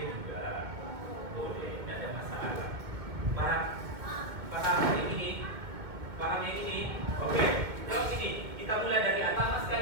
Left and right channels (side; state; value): left; late; 2.2 ms